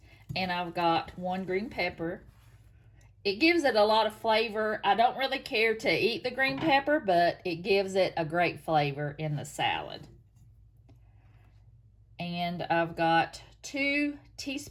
And I've got 1 green pepper. It gives it a lot of flavor. I don't really care to eat the green pepper, but it gives it a great flavor in the salad. And I've got 2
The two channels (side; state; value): both; identical; correlation 1.00